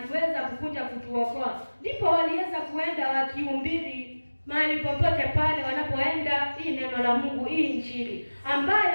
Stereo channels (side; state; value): both; inverted; correlation -1.00